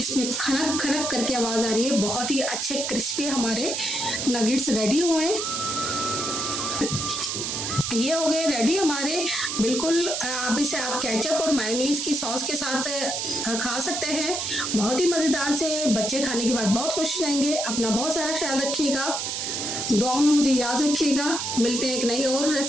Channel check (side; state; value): right; noise; hiss, 2 dB below the sound